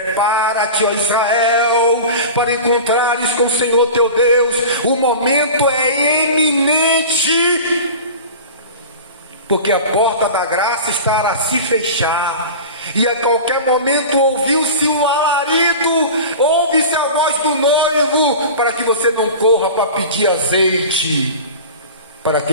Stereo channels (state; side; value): inverted; both; correlation -0.34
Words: ó Israel, para encontrares com o Senhor teu Deus. O momento é eminente, porque a porta da graça está a se fechar, e a qualquer momento ouviu-se um alarido, ouve-se a voz do noivo, para que você não corra para pedir azeite para